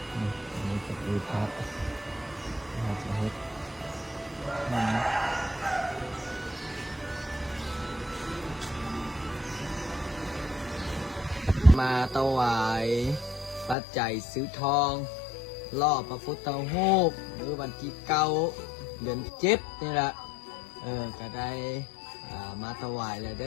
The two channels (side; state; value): right; drops out; at 13.8 s